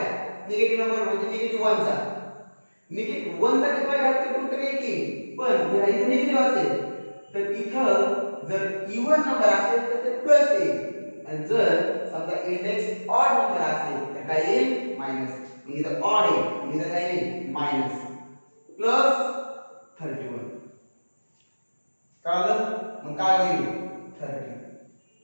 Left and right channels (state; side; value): inverted; both; correlation -1.00